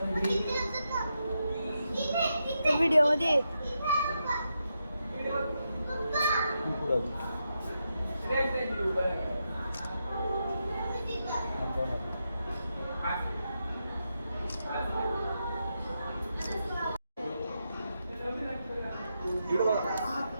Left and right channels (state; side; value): inverted; both; correlation -0.85